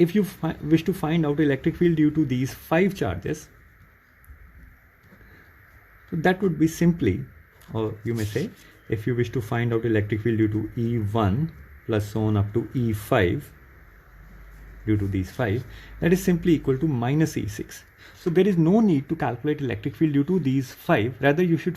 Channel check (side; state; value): both; identical; correlation 1.00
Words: you wish to find out electric field due to these 5 charges, so that would be simply, or you may say, if you wish to find out electric field due to E1 plus so on up to E5 due to these 5, that is simply equal to minus E6. So there is no need to calculate electric field due to these 5. Rather, you should